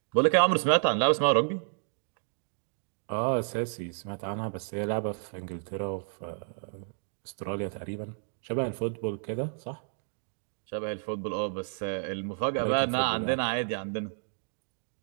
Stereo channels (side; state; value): left; silent; digital silence